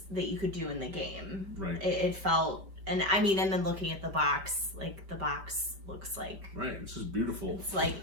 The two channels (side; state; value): left; late; 5.1 ms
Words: that you could do in the game. Right. It felt, and I mean, and then looking at the box, like the box looks like, right, it's just beautiful. It's like